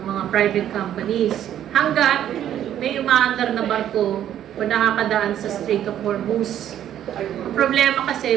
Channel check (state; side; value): quieter; left; 10.9 dB